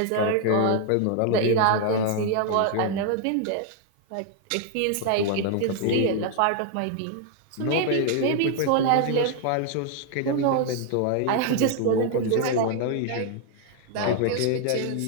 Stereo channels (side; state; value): both; different; correlation 0.00